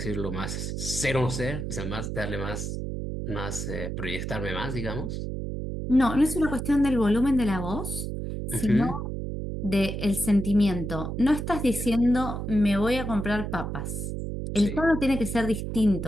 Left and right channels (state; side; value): noise; right; hum, 4 dB below the sound